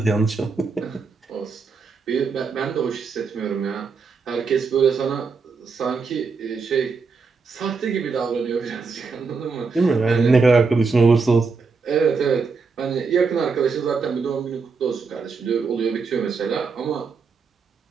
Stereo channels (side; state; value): left; quieter; 4.7 dB